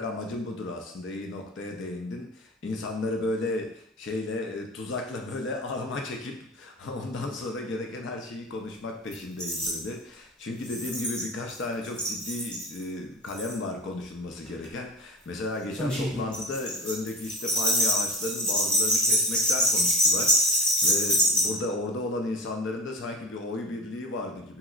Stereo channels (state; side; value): normal; both; correlation 0.34